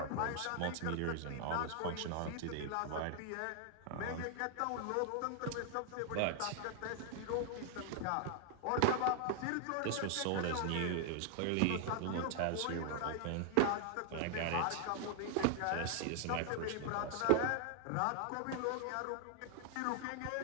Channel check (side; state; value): both; different; correlation 0.00